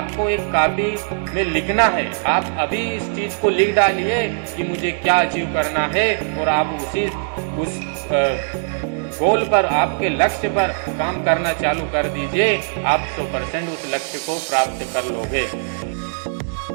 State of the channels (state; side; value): silent; left; digital silence